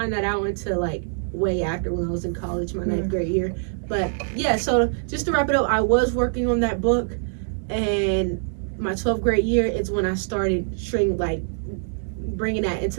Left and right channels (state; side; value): silent; left; digital silence